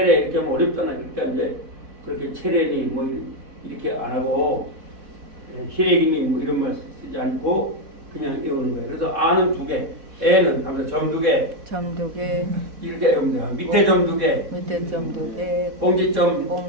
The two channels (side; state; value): left; late; 4.1 ms